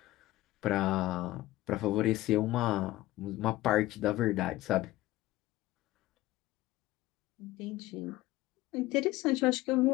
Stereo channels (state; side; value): quieter; right; 17.0 dB